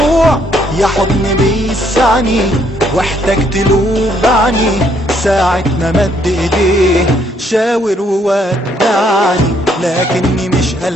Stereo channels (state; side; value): normal; both; correlation 0.69